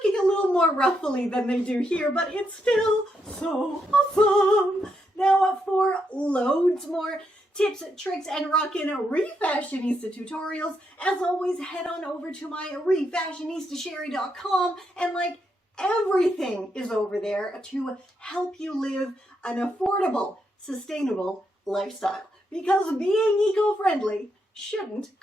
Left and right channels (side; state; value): both; normal; correlation 0.80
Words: little more ruffly than they do here, but it's still so awesome. Now for loads more tips, tricks, and rockin' Refashionista tutorials, as always, head on over to my refashionistasherry.com, and like everything is over there to help you live an affordable, sustainable lifestyle, because being eco-friendly shouldn't